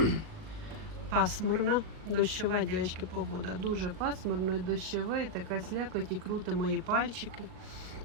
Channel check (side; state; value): left; late; 39 ms